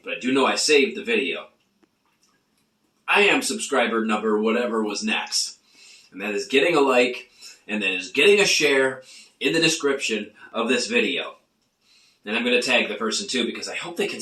but I do know I saved the video. I am subscriber number whatever was next. And that is getting a like, and that is getting a share in the description of this video. And I'm going to tag the person too, because I hope they can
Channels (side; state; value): both; identical; correlation 1.00